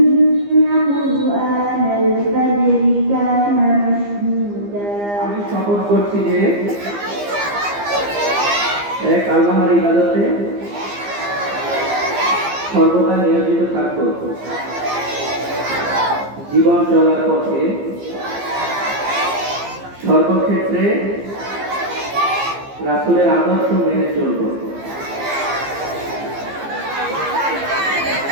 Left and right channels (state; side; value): late; left; 15 ms